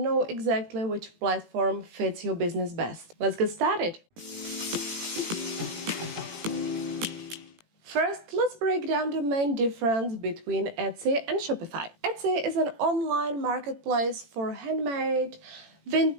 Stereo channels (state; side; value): late; left; 18 ms